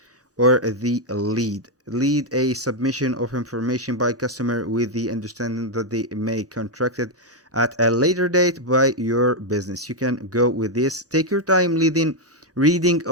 or the lead a submission of information by customer with the understanding that they may contracted at a later date by your business. You can go with this. Take your time reading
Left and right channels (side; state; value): both; normal; correlation 0.01